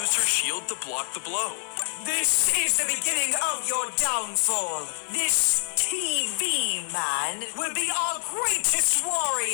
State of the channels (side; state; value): right; silent; 61 dB below the other